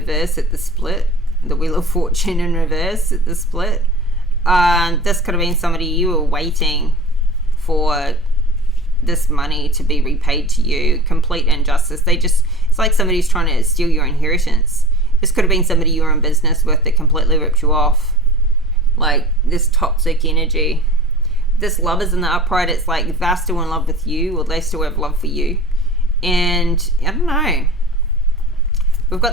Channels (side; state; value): both; normal; correlation 0.39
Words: at the split. The Wheel of Fortune in reverse at the split. This could have been somebody you were waiting for this money to be repaid to you. Complete injustice. It's like somebody's trying to steal your inheritance. This could have been somebody you were in business with that completely ripped you off. Like this toxic energy. This Lovers in the upright, it's like they're still in love with you, or they still have love for you. And I don't know. We've